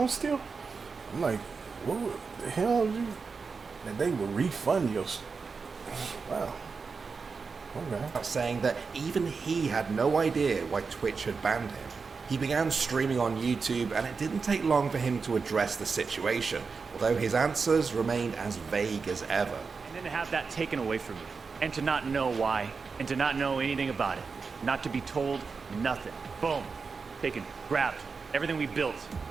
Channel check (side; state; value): left; quieter; 4.9 dB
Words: still? I'm like, what the hell? That they would refund your. Wow. Okay. Saying that even he had no idea why Twitch had banned him. He began streaming on YouTube, and it didn't take long for him to address the situation, although his answers remained as vague as ever. And then to have that taken away from you, and to not know why, and to not know anything about it, not to be told nothing. Boom. Taken, grabbed, everything we built,